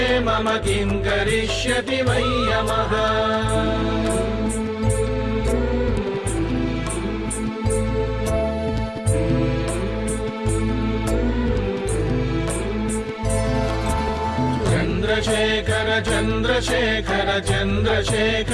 मम किं करिष्यति वै यमः चन्द्रशेखर चन्द्रशेखर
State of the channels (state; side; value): identical; both; correlation 1.00